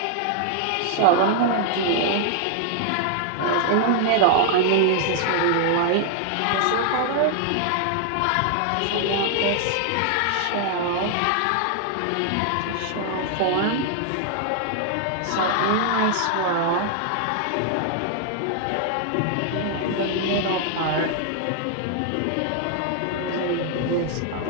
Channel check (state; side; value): different; both; correlation 0.00